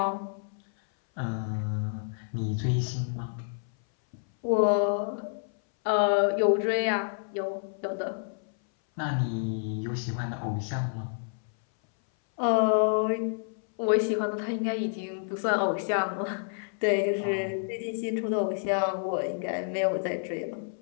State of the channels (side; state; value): right; silent; 59 dB below the other